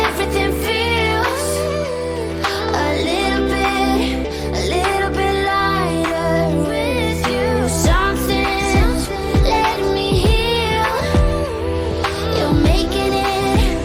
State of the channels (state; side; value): identical; both; correlation 1.00